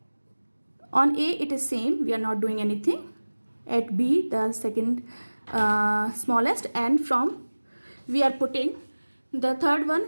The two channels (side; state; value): both; inverted; correlation -1.00